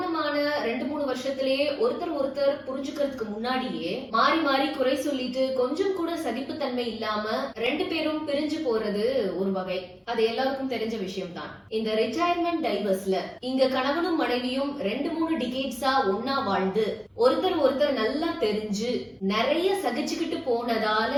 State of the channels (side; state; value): both; identical; correlation 1.00